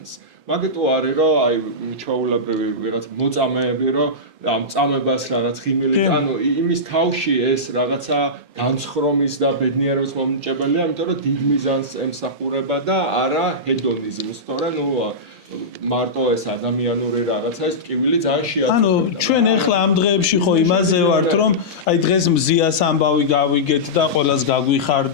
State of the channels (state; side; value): normal; both; correlation -0.15